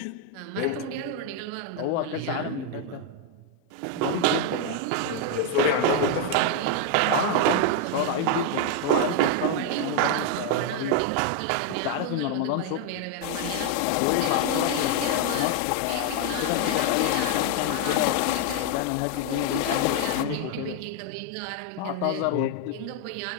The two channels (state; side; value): different; both; correlation 0.01